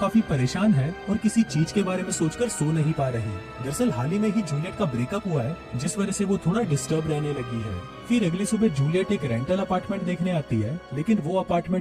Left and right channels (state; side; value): identical; both; correlation 1.00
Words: परेशान है और किसी चीज के बारे में सोचकर सो नहीं पा रही। दरअसल हाल ही में ही जूलियट का ब्रेकअप हुआ है जिस वजह से वो थोड़ा डिस्टर्ब रहने लगी है। फिर अगली सुबह जूलियट एक रेंटल अपार्टमेंट देखने आती है लेकिन वो